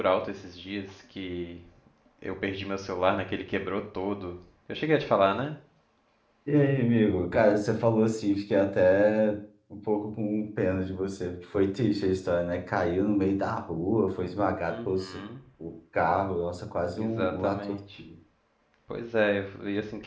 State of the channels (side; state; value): both; identical; correlation 1.00